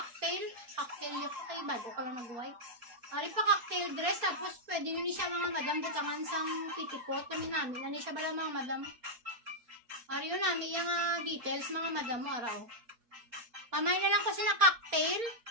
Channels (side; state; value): left; late; 4.3 ms